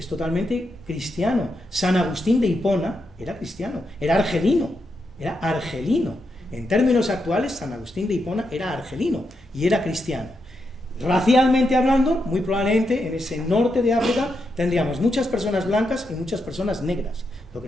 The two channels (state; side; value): normal; both; correlation 0.84